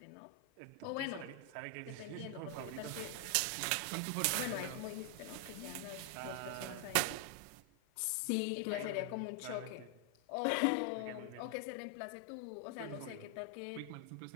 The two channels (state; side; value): different; both; correlation 0.00